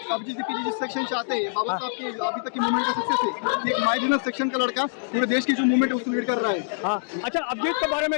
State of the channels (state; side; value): silent; right; digital silence